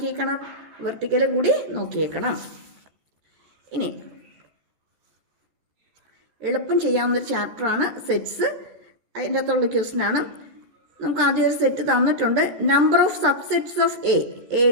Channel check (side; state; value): left; late; 13 ms